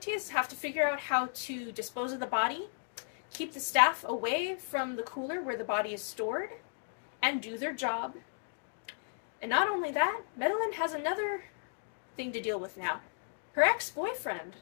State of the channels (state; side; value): silent; right; digital silence